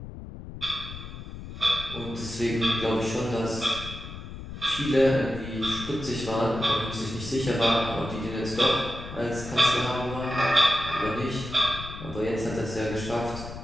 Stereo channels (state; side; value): noise; left; rumble, 11 dB below the sound